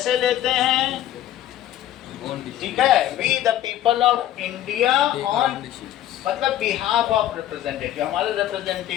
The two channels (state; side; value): quieter; right; 12.5 dB